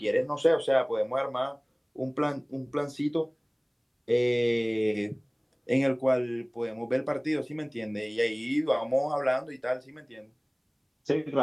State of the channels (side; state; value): both; identical; correlation 1.00